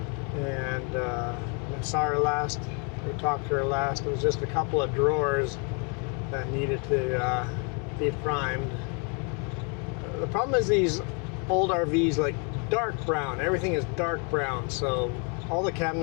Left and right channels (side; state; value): right; quieter; 36.5 dB